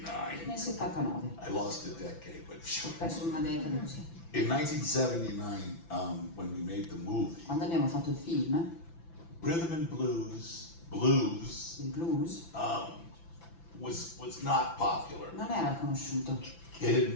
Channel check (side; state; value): right; late; 5.9 ms